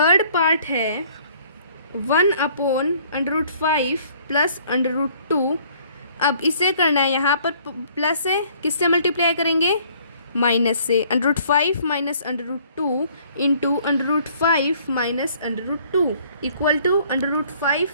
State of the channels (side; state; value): both; inverted; correlation -0.59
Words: पार्ट है 1/√5 प्लस √2। अब इसे करना है, यहाँ पर प्लस है, किससे मल्टीप्लाई करेंगे, माइनस से। √5 minus √2 into √5 minus √2 equal to